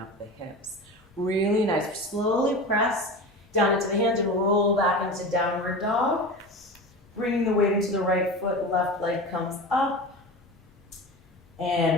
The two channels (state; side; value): normal; both; correlation 0.30